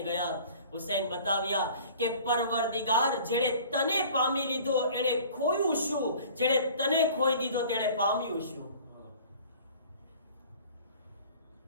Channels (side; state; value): both; inverted; correlation -0.47